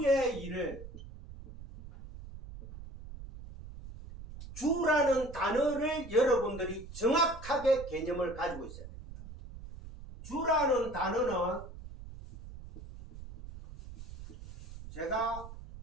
주라는 단어를 여러분들이 정확하게 개념을 가지고 있어야 됩니다. 주라는 단어는 제가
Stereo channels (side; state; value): right; noise; rumble, 14 dB below the sound